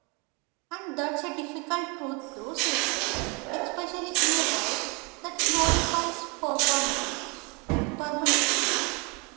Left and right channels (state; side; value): quieter; left; 30.5 dB